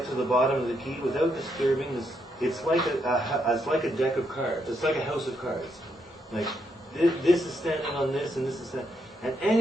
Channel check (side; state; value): both; normal; correlation 0.78